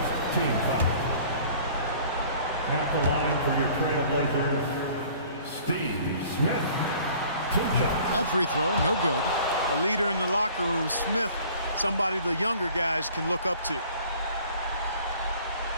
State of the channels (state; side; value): inverted; both; correlation -0.51